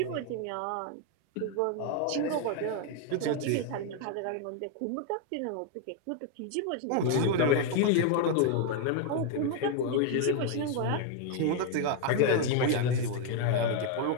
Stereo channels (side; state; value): both; different; correlation 0.01